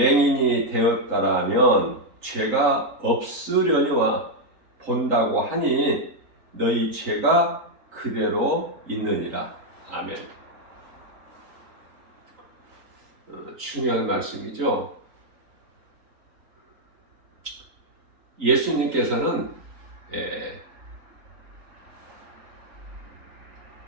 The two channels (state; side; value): late; left; 3.9 ms